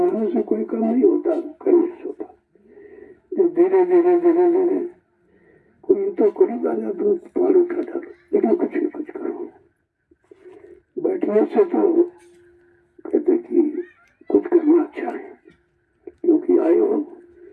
से कोई काम नहीं होता, करने से होता। जब धीरे धीरे धीरे धीरे कोई तो करेगा या तो पार उठा डालो, लेकिन कुछ न कुछ करो। बैठने से तो कहते कि कुछ करना अच्छा है, क्योंकि आए हो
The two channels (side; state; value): both; identical; correlation 1.00